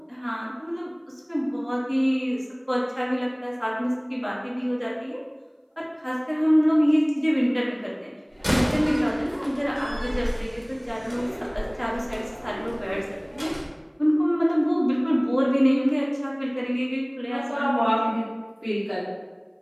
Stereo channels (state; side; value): identical; both; correlation 1.00